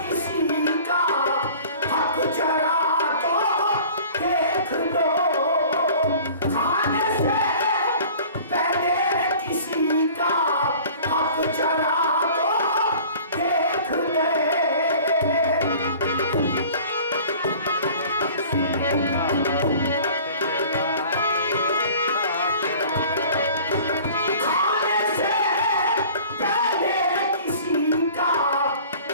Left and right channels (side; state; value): both; inverted; correlation -0.46